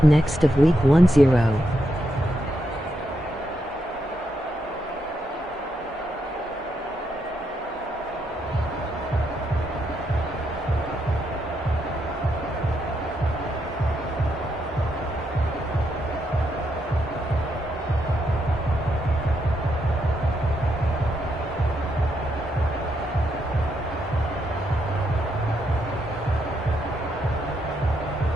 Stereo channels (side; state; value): both; normal; correlation 0.80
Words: next of Week 10.